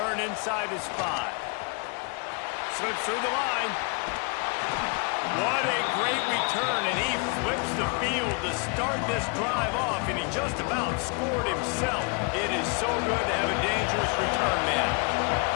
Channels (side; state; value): right; quieter; 34.4 dB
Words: inside his 5. Slips through the line. What a great return, and he flips the field to start this drive off, and he just about scored himself. It is so good to have a dangerous return man.